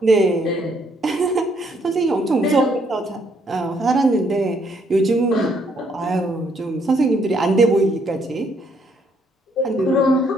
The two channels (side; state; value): both; normal; correlation 0.69